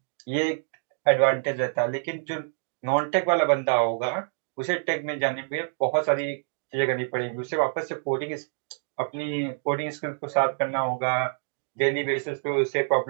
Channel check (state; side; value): silent; left; digital silence